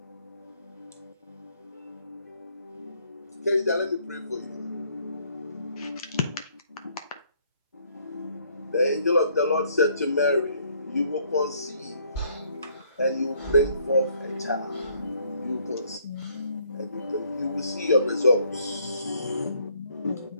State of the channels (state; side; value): inverted; both; correlation -0.65